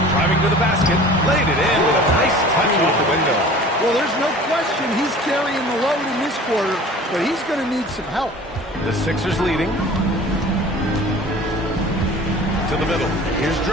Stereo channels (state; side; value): normal; both; correlation 0.44